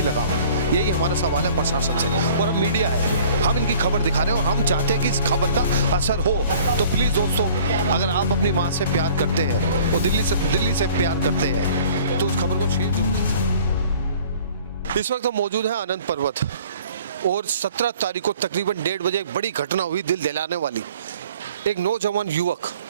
लगाम? यही हमारा सवाल है प्रशासन से। और हम मीडिया है, हम इनकी खबर दिखा रहे हैं और हम चाहते हैं कि इस खबर का असर हो। तो प्लीज़ दोस्तों, अगर आप अपनी माँ से प्यार करते हैं और दिल्ली से प्यार करते हैं तो उस खबर को शेयर जरूर। इस वक्त हम मौजूद हैं आनंद पर्वत और 17 तारीख को तकरीबन 1:30 बजे एक बड़ी घटना हुई, दिल दिलाने वाली। एक नौजवान युवक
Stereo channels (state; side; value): inverted; both; correlation -0.51